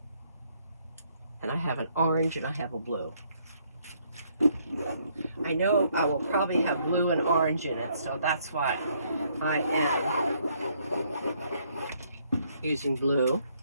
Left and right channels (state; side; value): inverted; both; correlation -0.68